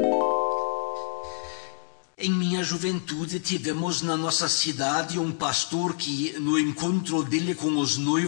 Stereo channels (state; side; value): silent; right; 60 dB below the other